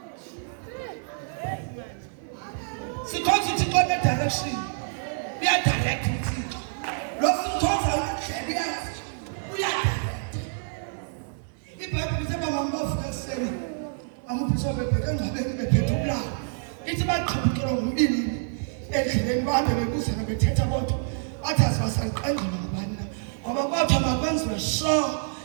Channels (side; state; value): left; silent; 60 dB below the other